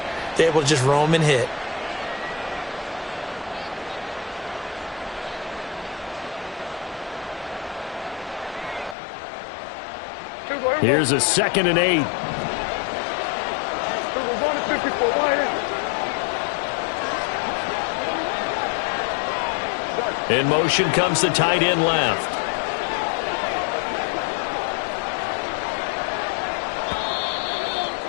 they're able to just roam and hit. Here's a 2nd and 8. In motion comes the tight end left.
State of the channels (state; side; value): drops out; right; at 9.0 s